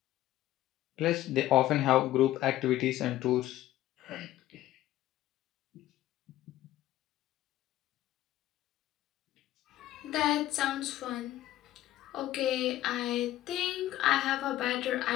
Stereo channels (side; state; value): right; quieter; 14.4 dB